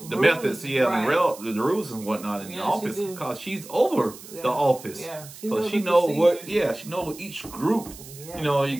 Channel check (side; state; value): right; noise; hiss, 17 dB below the sound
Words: right. the rules and whatnot in the office, because she's over the office. Yeah. So she knows what, she knows each group. Yeah, you